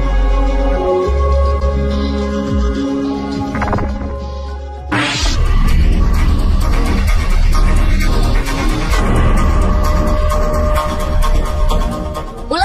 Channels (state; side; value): identical; both; correlation 1.00